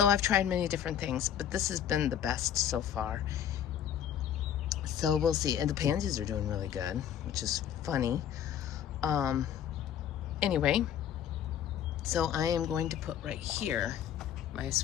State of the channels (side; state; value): right; quieter; 9.6 dB